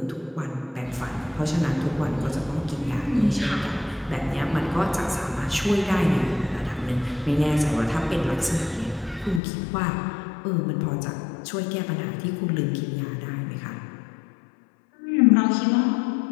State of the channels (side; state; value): right; drops out; at 9.4 s